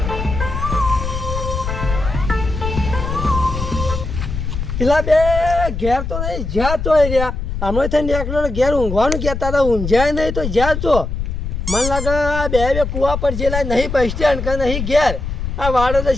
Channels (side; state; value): left; noise; rumble, 4 dB below the sound